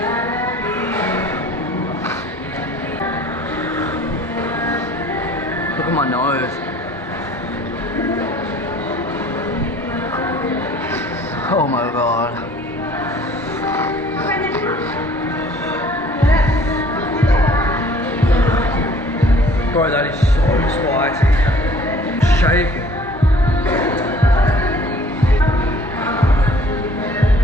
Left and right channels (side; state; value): both; normal; correlation 0.53